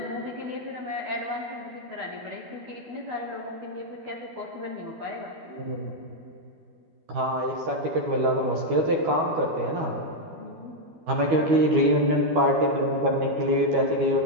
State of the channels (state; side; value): late; left; 12 ms